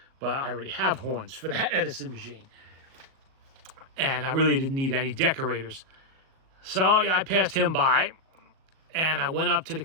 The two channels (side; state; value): left; late; 38 ms